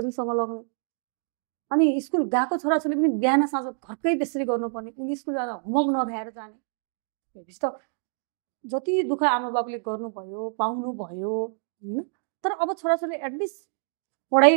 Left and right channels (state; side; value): silent; left; 58 dB below the other